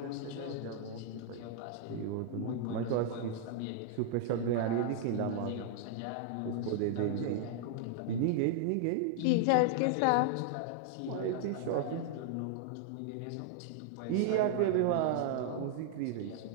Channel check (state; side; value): different; both; correlation -0.01